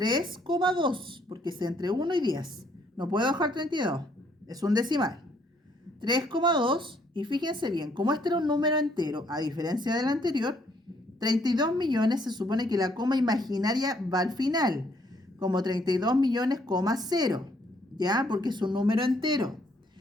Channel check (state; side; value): normal; both; correlation 0.68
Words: porque es entre 1 y 10. No puedo dejar 32. Es un decimal. 3,2. Y fíjense bien, como este era un número entero, a diferencia del anterior, 32 millones se supone que la coma imaginaria va al final, como 32 millones, 0, ¿ya? Porque es un número entero.